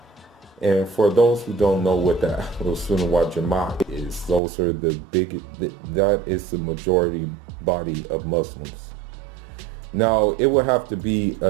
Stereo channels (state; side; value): drops out; left; at 4.4 s